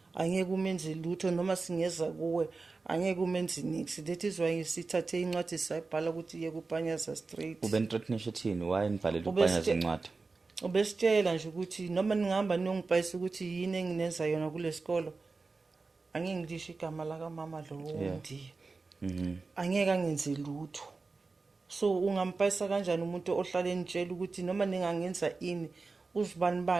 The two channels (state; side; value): quieter; left; 4.0 dB